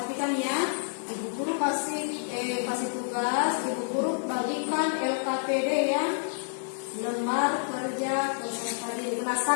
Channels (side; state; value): right; silent; digital silence